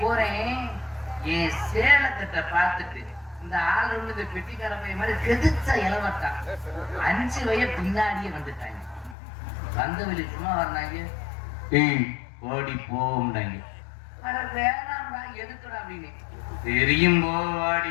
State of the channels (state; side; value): drops out; right; at 9.2 s